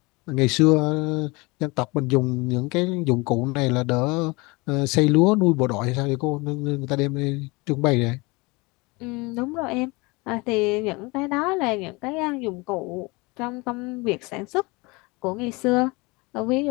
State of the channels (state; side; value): quieter; right; 25.5 dB